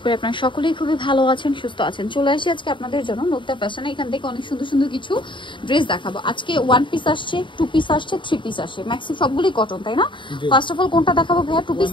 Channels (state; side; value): late; right; 0.24 ms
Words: করি আপনারা সকলেই খুবই ভালো আছেন, সুস্থ আছেন। চলে আসি আজকে আপনাদের জন্য নোকতা ফ্যাশনে। এখান থেকে অনেক সুন্দর সুন্দর কিছু ড্রেস দেখাবো। আজকে 1 পিস আসছে, 2 পিস আসছে, 3 পিস আসছে, ম্যাক্সি সবগুলোই কটন, তাই না? ফার্স্ট অফ অল কোনটা দেখাবো ভাইয়া? 2 পিস